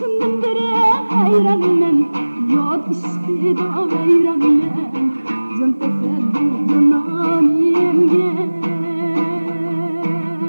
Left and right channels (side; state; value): both; inverted; correlation -1.00